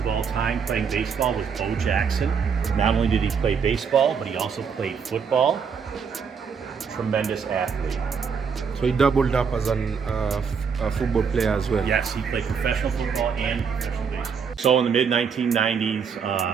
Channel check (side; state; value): left; quieter; 6.3 dB